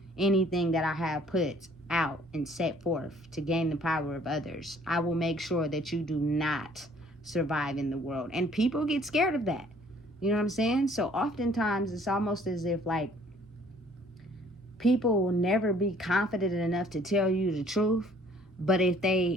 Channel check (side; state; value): both; normal; correlation 0.57